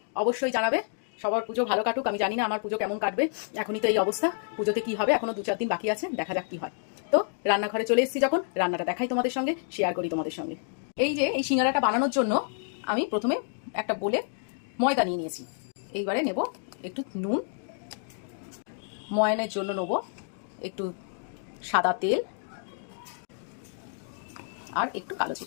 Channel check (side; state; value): right; silent; 59 dB below the other